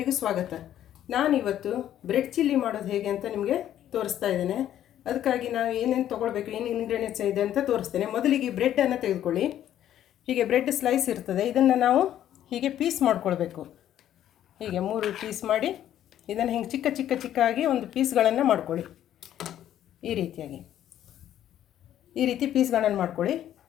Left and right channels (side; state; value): right; quieter; 11.5 dB